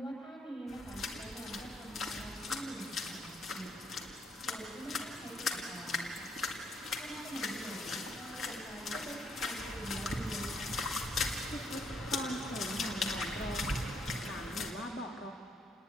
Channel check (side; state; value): both; normal; correlation 0.71